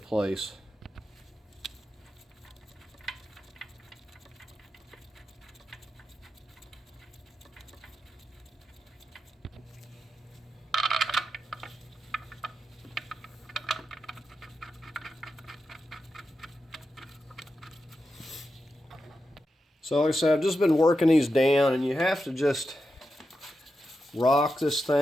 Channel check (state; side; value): normal; both; correlation 0.89